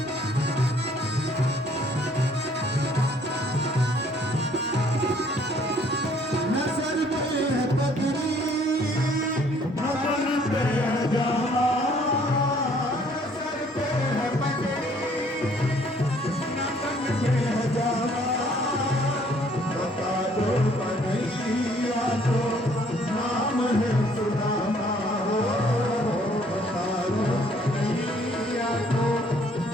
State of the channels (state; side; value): normal; both; correlation 0.61